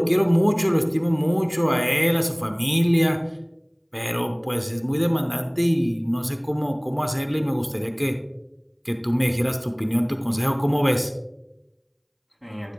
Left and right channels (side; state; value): both; identical; correlation 1.00